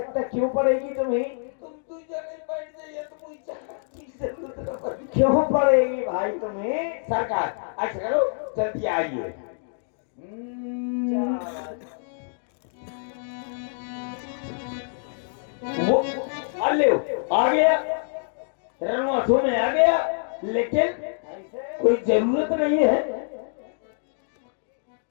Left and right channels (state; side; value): silent; right; digital silence